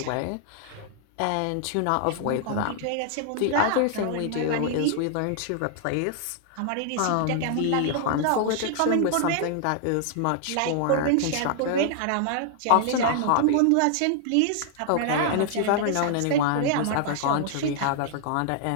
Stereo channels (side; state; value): both; different; correlation -0.01